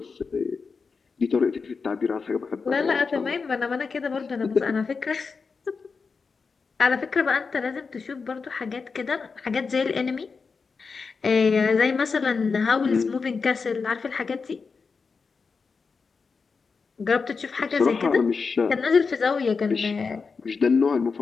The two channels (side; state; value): right; quieter; 4.9 dB